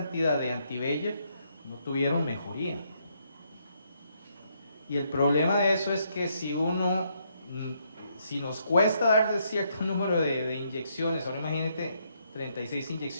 de anti-VEGF, no tuvieron mejoría. Y el problema de eso es que si nos cuesta darle cierto número de inyecciones, ahora imagínate 36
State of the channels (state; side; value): inverted; both; correlation -0.74